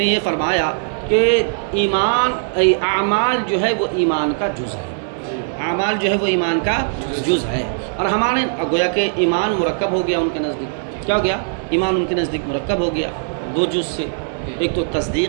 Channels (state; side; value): silent; left; 66 dB below the other